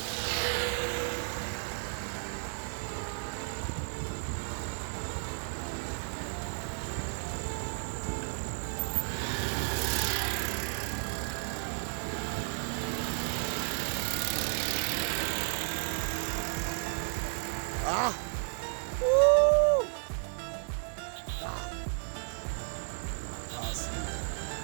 Ah! Woo! Ah.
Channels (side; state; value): left; silent; 56 dB below the other